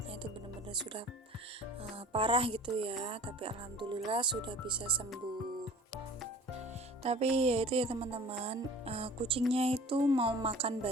itu benar-benar sudah parah gitu ya. Tapi alhamdulillah sudah bisa sembuh. Tapi ya itu ya teman-teman, kucingnya itu mau makan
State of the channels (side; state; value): both; normal; correlation 0.44